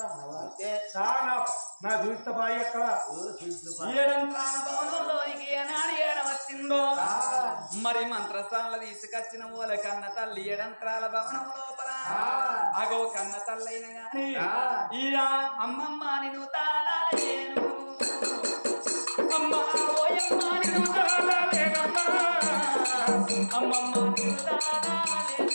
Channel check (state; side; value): inverted; both; correlation -1.00